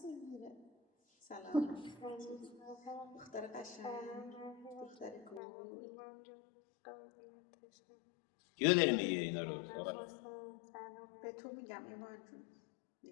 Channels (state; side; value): drops out; right; at 5.4 s